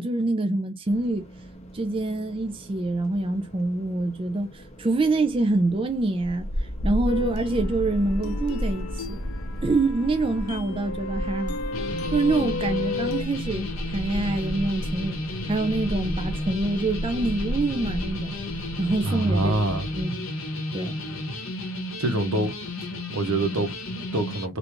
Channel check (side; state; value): both; normal; correlation 0.71